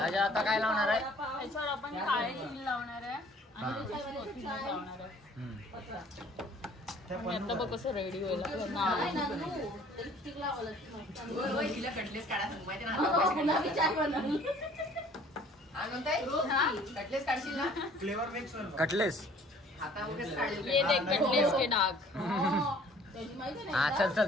आता काय लावणार आहे? त्याच्यावर आपण काळे तीळ लावणार आहे आणि त्याच्यावर कोथिंबीर लावणार आहे. आणि आता बघ कसं रेडी होईल आपलं नान. Flavour mix Cutlass. ये देख कटलेस के डाग. हा चल चल,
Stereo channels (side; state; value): both; normal; correlation 0.54